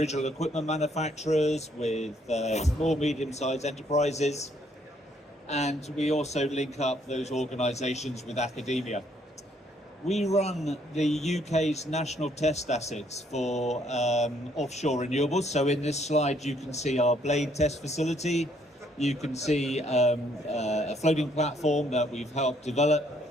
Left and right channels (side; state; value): both; normal; correlation 0.68